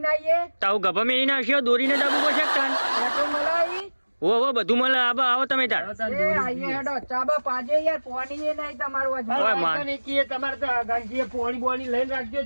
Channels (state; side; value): inverted; both; correlation -1.00